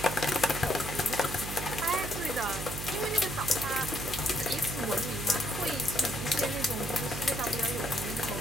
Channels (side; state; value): right; noise; hum, 7 dB below the sound